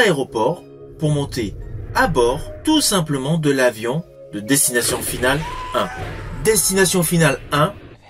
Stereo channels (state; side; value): identical; both; correlation 1.00